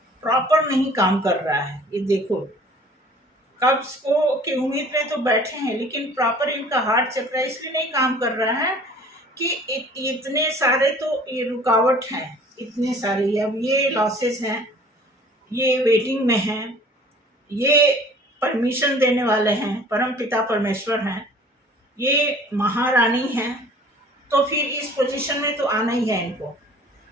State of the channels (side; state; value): both; normal; correlation 0.50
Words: प्रॉपर नहीं काम कर रहा है। ये देखो, कब्ज को की उम्मीद में तो बैठे हैं, लेकिन प्रॉपर इनका हार्ट चक्र इसलिए नहीं काम कर रहा है कि इतने सारे तो ये रुकावट हैं, इतने सारे। अब ये लॉसेस हैं, ये वेटिंग में हैं, ये परमिशन देने वाले हैं, परम पिता परमेश्वर हैं, ये महारानी हैं, तो फिर इस पोजीशन में तो आना ही है इनको।